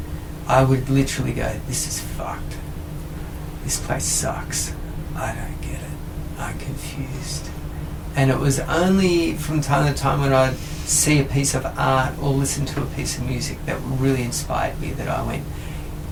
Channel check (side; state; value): both; identical; correlation 1.00